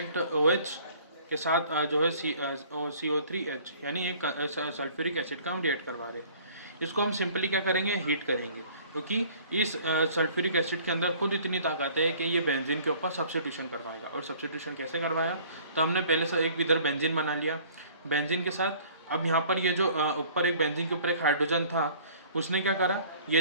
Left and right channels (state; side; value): inverted; both; correlation -0.53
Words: OH के साथ जो है CO3H यानी एक सल्फ्यूरिक एसिड का हम रिएक्ट करवा रहे हैं। इसको हम सिंपली क्या करेंगे, हीट करेंगे, क्योंकि इस सल्फ्यूरिक एसिड के अंदर खुद इतनी ताकत है कि ये बेंजीन के ऊपर सब्स्टिट्यूशन करवाएगा। और सब्स्टिट्यूशन कैसे करवाया, तो हमने पहले से एक इधर बेंजीन बना लिया, बेंजीन के साथ अब यहाँ पर ये जो ऊपर एक बेंजीन के ऊपर एक हाइड्रोजन था उसने क्या करा,